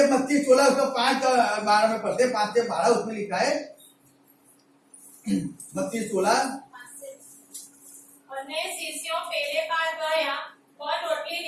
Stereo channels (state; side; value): identical; both; correlation 1.00